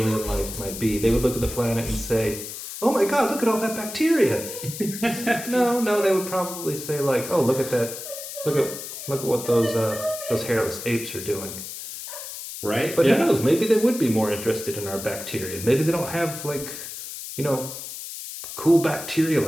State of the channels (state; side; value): noise; left; hiss, 9 dB below the sound